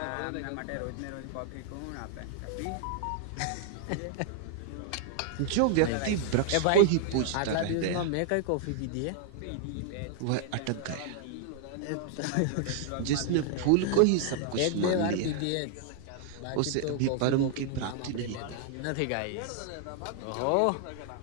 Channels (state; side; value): different; both; correlation -0.01